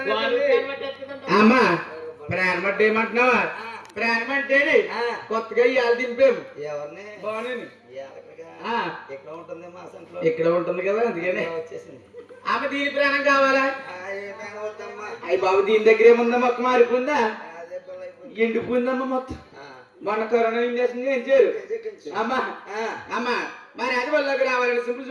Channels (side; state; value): both; identical; correlation 1.00